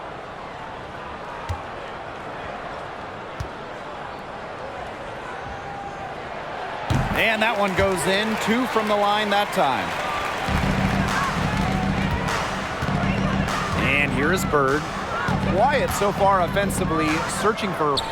And that one goes in. 2 from the line that time. And here is Bird. Quiet so far offensively, searching for her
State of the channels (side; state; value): both; identical; correlation 1.00